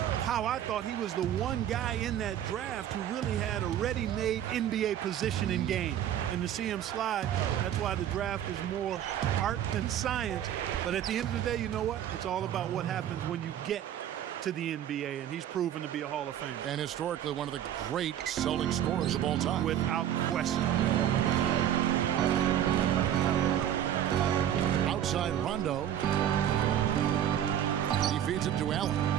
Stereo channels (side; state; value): left; quieter; 10.7 dB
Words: how I thought he was the one guy in that draft who really had a ready-made NBA position in game. And to see him slide, that's why the draft is more art than science. But at the end of the day, you know what? It's all about what happens when you get to the NBA, and he's proven to be a Hall of Famer. And historically one of the great Celtic scorers of all time. Without question. Outside Rondo. He feeds it to Allen.